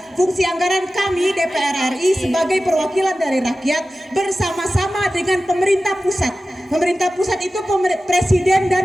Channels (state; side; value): normal; both; correlation 0.95